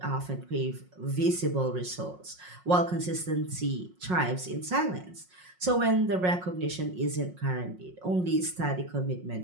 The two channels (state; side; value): late; left; 5.5 ms